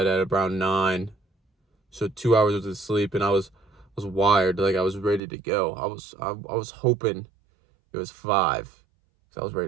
at around 9. So 2 hours of sleep and I was wired, like I was ready to go. I was hoping it was 5 because I was ready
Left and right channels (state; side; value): drops out; left; at 5.2 s